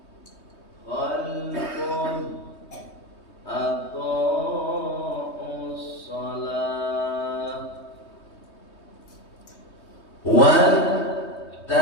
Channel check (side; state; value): right; late; 3.2 ms